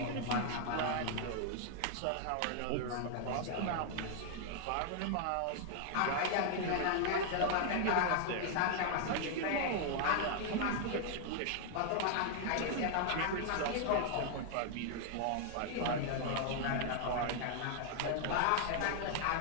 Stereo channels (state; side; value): different; both; correlation 0.00